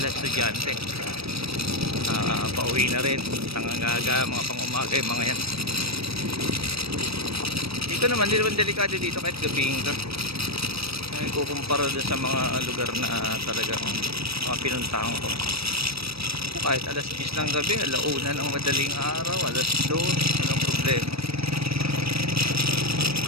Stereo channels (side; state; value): left; late; 0.77 ms